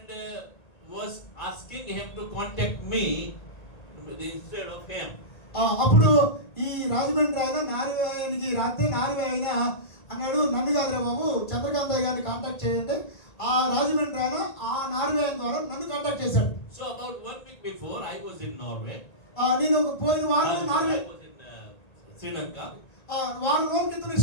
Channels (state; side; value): late; right; 1.8 ms